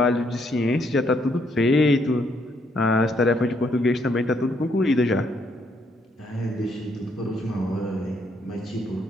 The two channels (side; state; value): both; normal; correlation 0.72